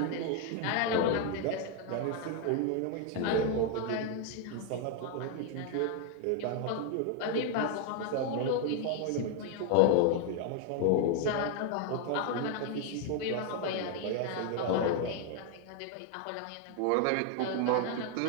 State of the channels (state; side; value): different; both; correlation 0.01